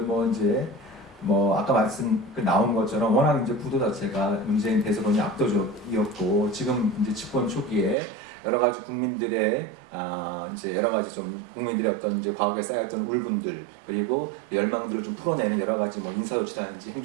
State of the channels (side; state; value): left; drops out; at 8.0 s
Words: 아까 나온 것처럼 워낙 이제 구도 자체가 문재인 대선론이 압도적이었고 지금 이제 집권 초기에 여러 가지 국민들의 이제 여러 가지 좀 국민들의 어떤 이제 과거에 쌓였던 울분들 그리고 열망들을 좀 풀어내는 여러 가지 뭐 인사조치라든지